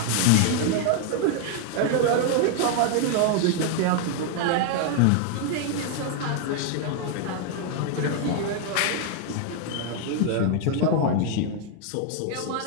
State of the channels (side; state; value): both; different; correlation 0.00